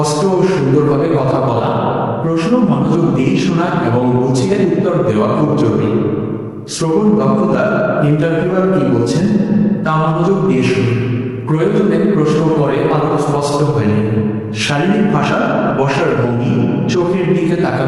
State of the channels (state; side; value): identical; both; correlation 1.00